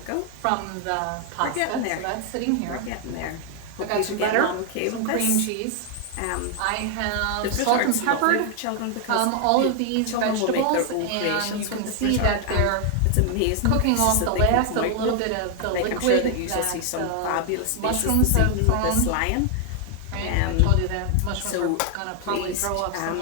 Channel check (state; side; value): different; both; correlation 0.00